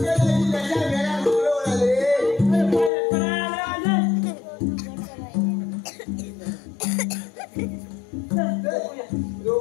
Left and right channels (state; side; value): drops out; right; at 2.9 s